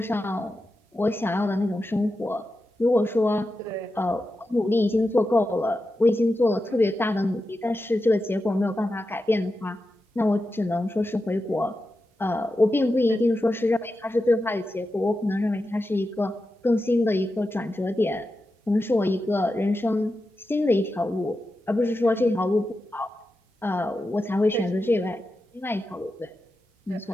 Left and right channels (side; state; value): both; normal; correlation 0.90